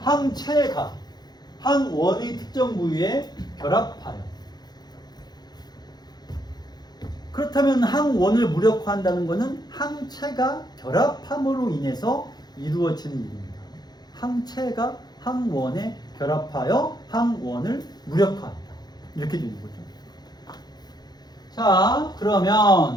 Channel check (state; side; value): late; right; 0.20 ms